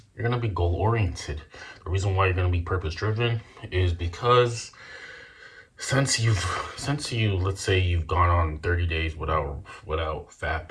You're going to be goal oriented. The reason why you're going to be purpose driven is because since you let's say you've gone on 30 days without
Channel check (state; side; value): identical; both; correlation 1.00